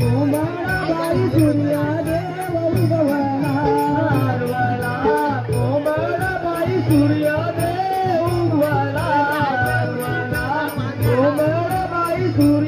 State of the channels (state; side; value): identical; both; correlation 1.00